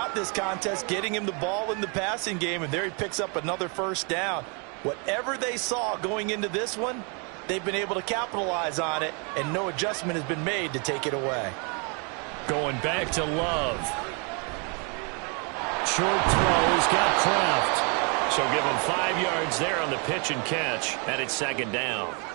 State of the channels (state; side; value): quieter; left; 35.2 dB